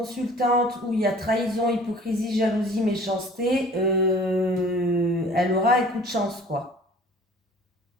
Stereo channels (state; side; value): normal; both; correlation 0.48